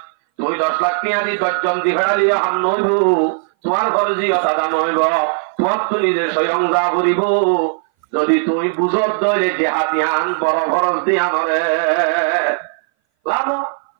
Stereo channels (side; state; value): left; silent; 61 dB below the other